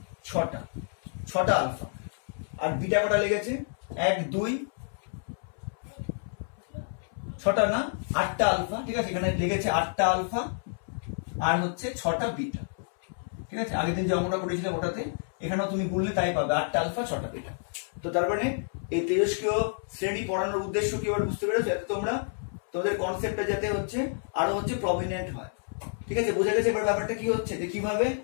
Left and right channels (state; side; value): silent; right; 59 dB below the other